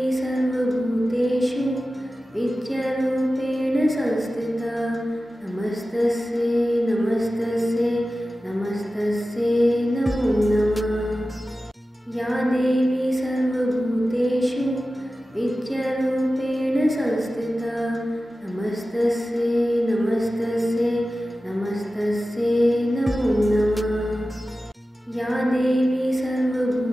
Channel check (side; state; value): both; normal; correlation 0.95